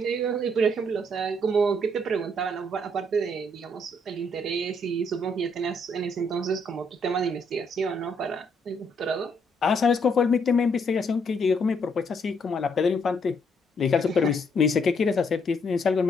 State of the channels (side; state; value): both; normal; correlation 0.71